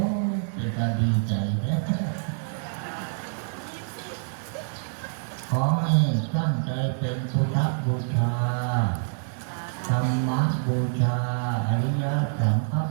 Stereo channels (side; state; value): left; silent; digital silence